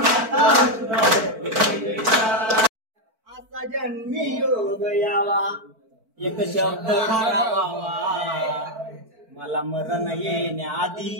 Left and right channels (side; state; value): left; late; 4.5 ms